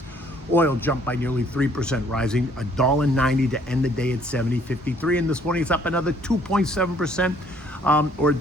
Oil jumped by nearly 3%, rising $1.90 to end the day at $70.53. And this morning it's up another 2.7%, or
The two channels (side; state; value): both; normal; correlation 0.62